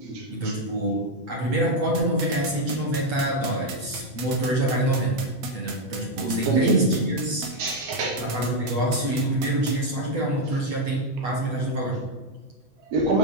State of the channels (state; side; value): late; left; 7.9 ms